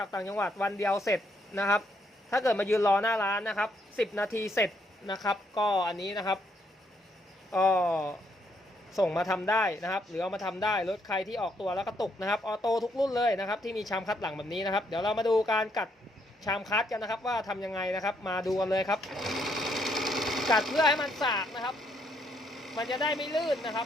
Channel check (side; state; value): both; normal; correlation 0.73